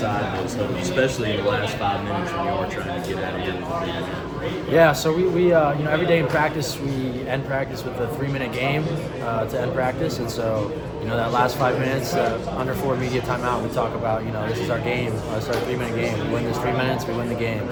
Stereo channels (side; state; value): both; identical; correlation 1.00